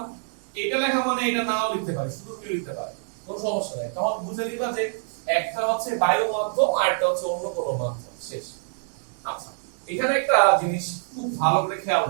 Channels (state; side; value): silent; left; 61 dB below the other